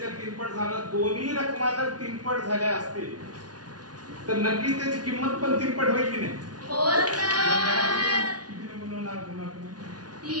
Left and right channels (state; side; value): late; left; 0.69 ms